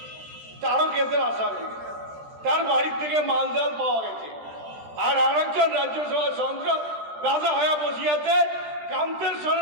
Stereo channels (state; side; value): late; left; 13 ms